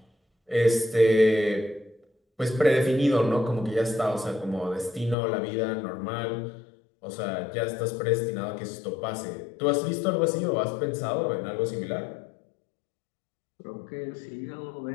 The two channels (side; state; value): right; drops out; at 5.2 s